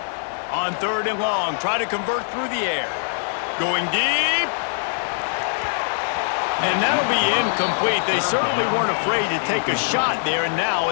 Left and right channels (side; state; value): right; silent; 64 dB below the other